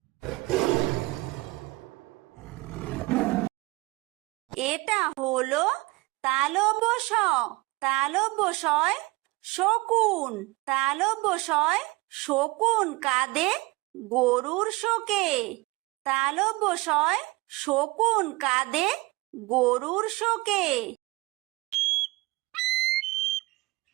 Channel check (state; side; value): quieter; left; 22.5 dB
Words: এটা হলো তালব্য শ, তালব্য শয় শকুন, তালব্য শয় শকুন কাঁদে গরুর শোকে, তালব্য শয় শকুন কাঁদে গরুর শোকে।